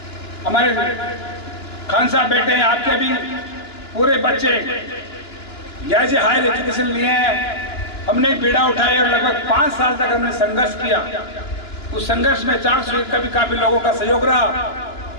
हमारे खान साहब बैठे हैं, आपके भी पूरे बच्चे यहाँ से हायर एजुकेशन लिए हैं। हमने एक बीड़ा उठाया और लगभग 5 साल तक हमने संघर्ष किया। उस संघर्ष में 400 का भी काफी लोगों का सहयोग रहा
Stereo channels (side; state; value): right; late; 2.9 ms